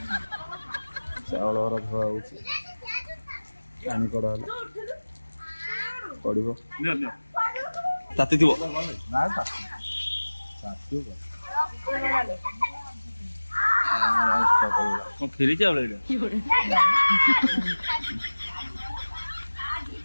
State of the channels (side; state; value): both; inverted; correlation -1.00